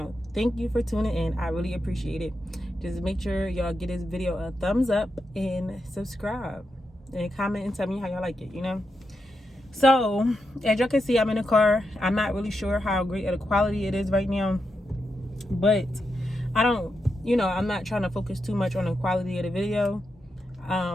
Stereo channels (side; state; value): both; normal; correlation 0.86